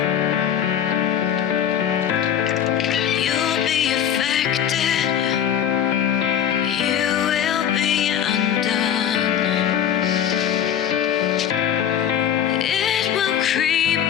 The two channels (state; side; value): quieter; right; 9.5 dB